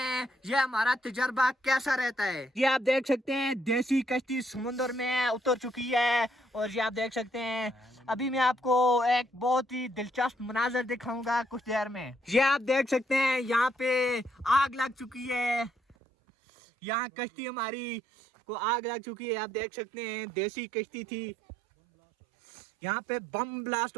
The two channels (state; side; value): drops out; left; at 16.0 s